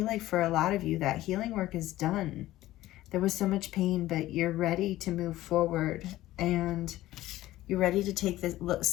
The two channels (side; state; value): right; quieter; 15.7 dB